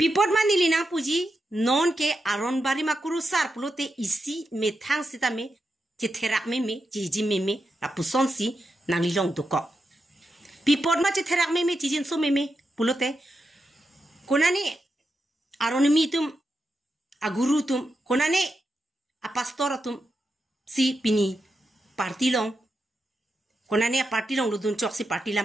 manili na puji non ke aron bari makuru sar pulote isi methang sita me chetherak me jiji me apuson si nangli long duko pipot ma chetherak me jijin so me pulote konani aron mitum agurutum konane a pastoratum si pini partilong Konani a parti long ludun chok si parti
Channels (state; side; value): normal; both; correlation 0.87